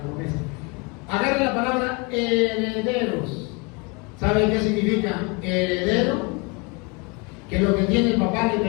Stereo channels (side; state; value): right; quieter; 28.0 dB